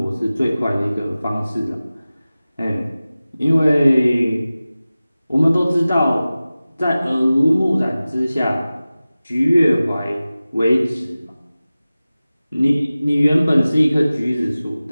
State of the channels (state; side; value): inverted; both; correlation -0.97